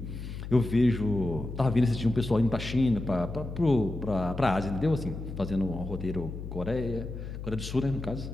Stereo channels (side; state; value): left; noise; hum, 8 dB below the sound